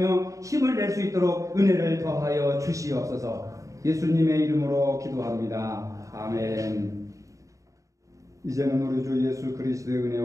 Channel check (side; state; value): left; late; 0.16 ms